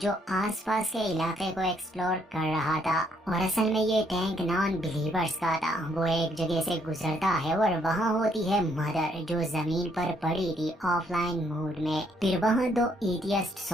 आसपास के इलाके को एक्सप्लोर कर रहा था और असल में ये टैंक नॉन बिलीवर्स का था। वो एक जगह से गुजरता है और वहाँ होती है मदर जो जमीन पर पड़ी थी ऑफलाइन मोड में। फिर वहाँ दो एथियस्ट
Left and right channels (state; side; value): normal; both; correlation 0.70